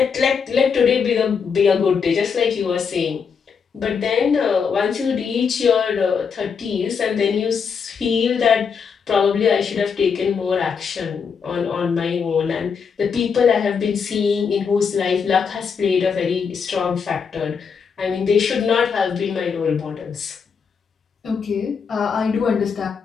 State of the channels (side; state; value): right; quieter; 6.2 dB